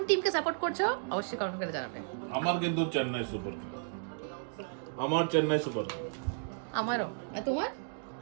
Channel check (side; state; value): left; silent; digital silence